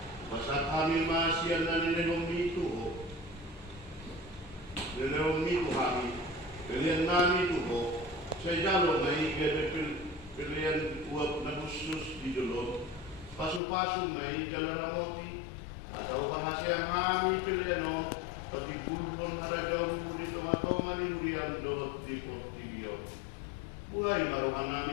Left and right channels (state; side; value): drops out; right; at 13.6 s